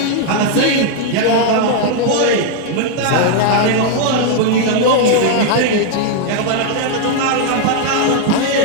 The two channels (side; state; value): both; different; correlation 0.00